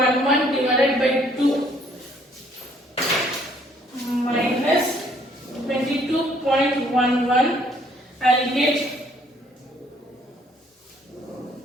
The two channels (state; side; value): normal; both; correlation 0.63